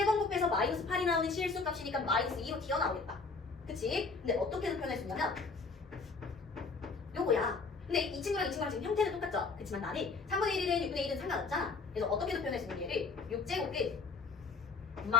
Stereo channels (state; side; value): quieter; right; 4.4 dB